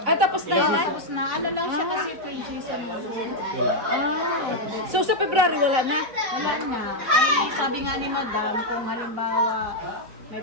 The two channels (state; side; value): late; left; 3.9 ms